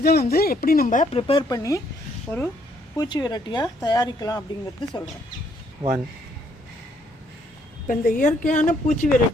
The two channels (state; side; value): normal; both; correlation 0.68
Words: வந்து எப்படி நம்ம ப்ரிப்பேர் பண்ணி ஒரு பூச்சி விரட்டியாக தயாரிக்கலாம் அப்படிங்கிறது சொல்கிறேன். இப்போ இந்த இயற்கையான பூச்சி